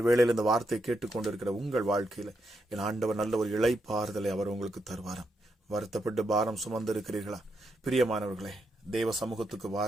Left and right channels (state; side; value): normal; both; correlation 0.82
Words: வேளையில் இந்த வார்த்தை கேட்டுக்கொண்டிருக்கிற உங்கள் வாழ்க்கையில என் ஆண்டவர் நல்ல ஒரு இளைப்பாறுதலை அவர் உங்களுக்கு தருவாராம். வருத்தப்பட்டு பாரம் சுமந்திருக்கிறீர்களா? பிரியமானவர்களே, தேவ சமூகத்துக்கு